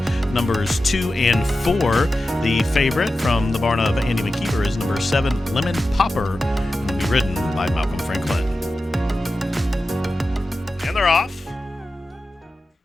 numbers 2 and 4. The favorite from the barn of Andy McKeever is number 7, Lemon Popper, and will be ridden by Malcolm Franklin. And they're off.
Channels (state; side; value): normal; both; correlation 0.93